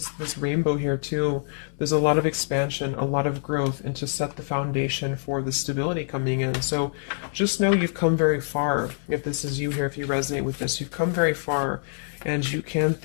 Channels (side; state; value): right; silent; 61 dB below the other